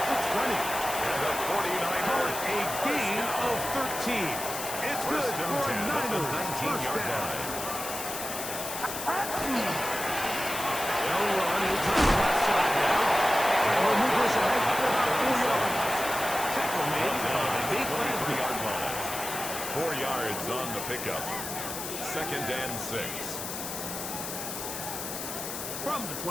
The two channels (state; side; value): noise; left; hiss, 6 dB below the sound